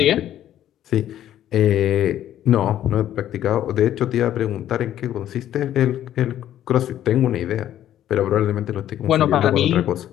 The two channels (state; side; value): quieter; right; 11.8 dB